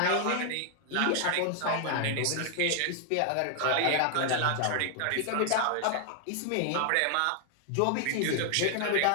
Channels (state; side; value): different; both; correlation 0.00